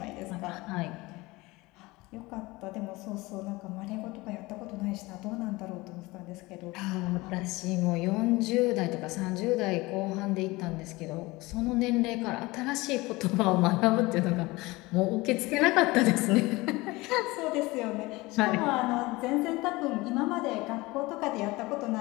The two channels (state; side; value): quieter; right; 21.8 dB